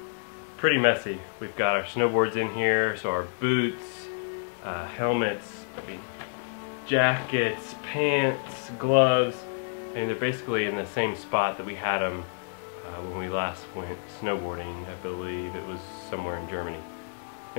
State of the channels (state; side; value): silent; right; 57 dB below the other